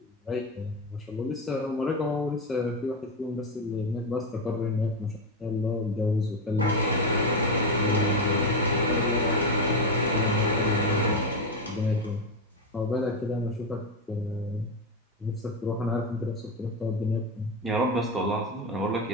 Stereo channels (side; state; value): both; normal; correlation 0.12